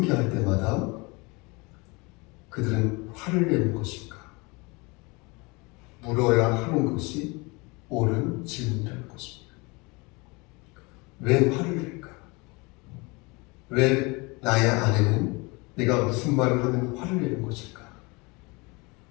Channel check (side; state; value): right; quieter; 26.8 dB